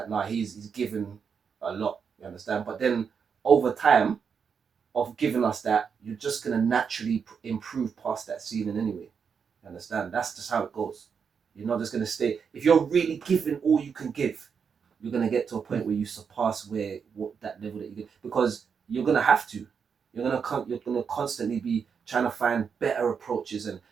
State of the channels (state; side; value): quieter; left; 6.4 dB